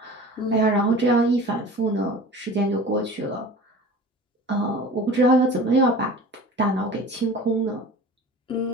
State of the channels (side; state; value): both; normal; correlation 0.39